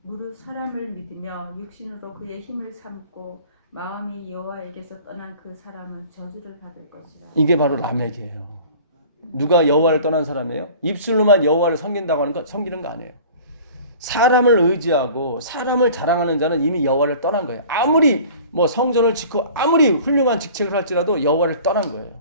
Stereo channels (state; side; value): inverted; both; correlation -0.45